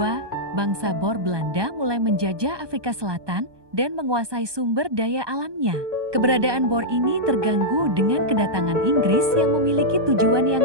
bangsa Boer Belanda mulai menjajah Afrika Selatan dan menguasai sumber daya alamnya. Keberadaan Boer ini terganggu dengan kedatangan Inggris yang memiliki tujuan yang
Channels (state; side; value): late; left; 1.2 ms